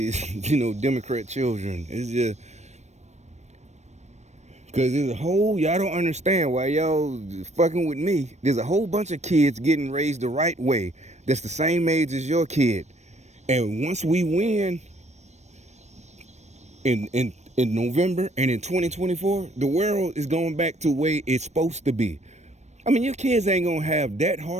Democrat children. It's just, cause there's y'all don't understand why y'all fucking with me. There's a whole bunch of kids getting raised the right way that's the same age as your kid. And once we win in November and in 2024, the world is going back to the way it's supposed to be. I mean, your kids ain't gonna have that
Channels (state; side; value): late; left; 0.33 ms